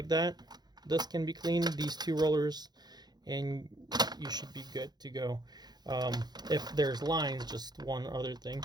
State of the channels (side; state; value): left; late; 0.20 ms